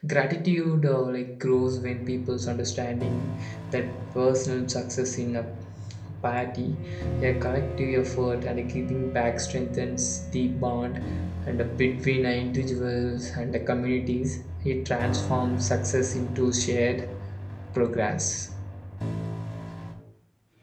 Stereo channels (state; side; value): identical; both; correlation 1.00